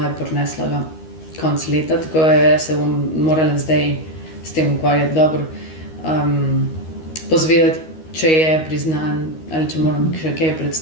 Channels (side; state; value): right; late; 13 ms